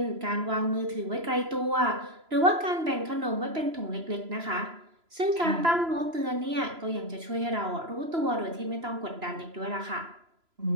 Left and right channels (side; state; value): left; late; 3.0 ms